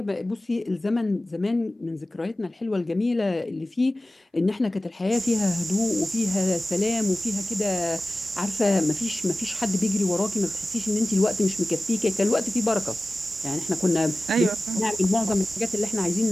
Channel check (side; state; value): both; normal; correlation 0.96